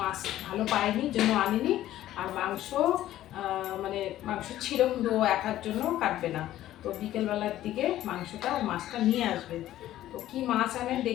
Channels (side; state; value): right; quieter; 13.6 dB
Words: ভালো পায়নি, জন্য আনেনি। আর মাংস মানে মাংস ছিল, কিন্তু ও একার জন্য কাটবে না। তো বিকেলবেলার দিকে মাংসটা আর মাছটা নিয়ে আসবে। তো কি মাছ আনে